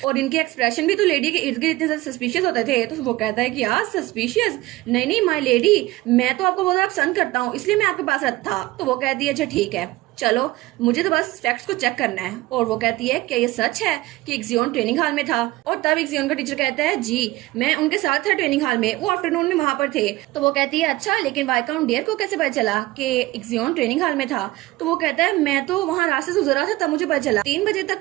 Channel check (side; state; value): left; quieter; 18.7 dB